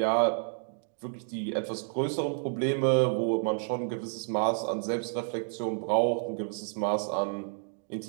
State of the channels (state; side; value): silent; left; digital silence